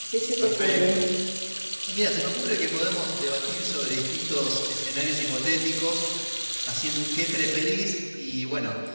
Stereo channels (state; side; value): inverted; both; correlation -1.00